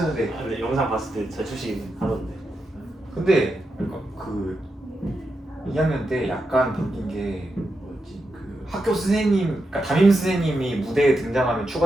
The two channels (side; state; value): both; normal; correlation 0.86